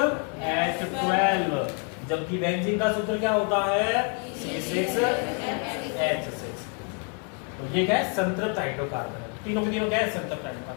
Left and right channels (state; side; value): quieter; right; 39.7 dB